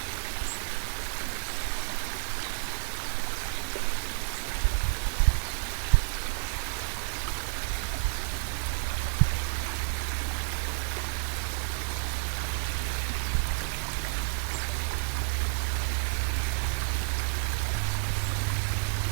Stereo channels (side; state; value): left; silent; digital silence